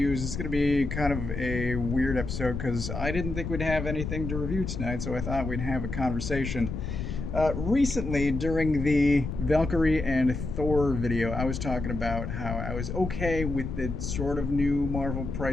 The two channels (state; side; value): noise; left; rumble, 5 dB below the sound